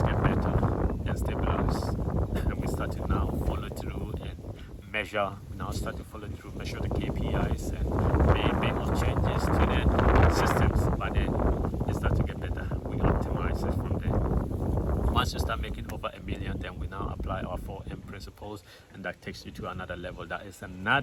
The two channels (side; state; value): both; identical; correlation 1.00